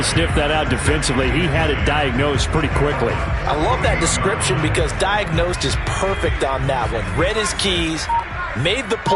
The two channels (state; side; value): identical; both; correlation 1.00